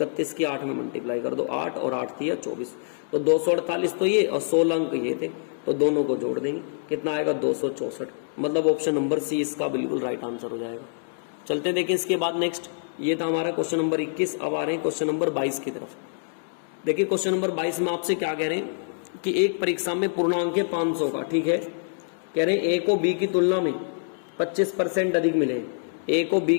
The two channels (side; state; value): right; silent; digital silence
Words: की 8 में मल्टीप्लाई कर दो, 8 और 8 थी 24, तो 248 तो ये और 16 अंक ये थे, तो दोनों को जोड़ देंगे, कितना आएगा, 264। मतलब ऑप्शन नंबर सी इसका बिल्कुल राइट आंसर हो जाएगा। चलते देखिए इसके बाद नेक्स्ट, ये था हमारा क्वेश्चन नंबर 21। अब आ रहे हैं क्वेश्चन नंबर 22 की तरफ। देखिए क्वेश्चन नंबर 22 में आपसे क्या कह रहे हैं कि एक परीक्षा में पूर्णांक है 500 का, ठीक है, कह रहे हैं ए को बी की तुलना में 25% अधिक मिले, ए को बी